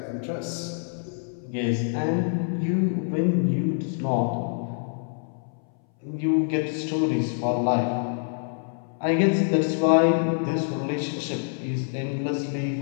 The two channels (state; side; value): silent; right; 59 dB below the other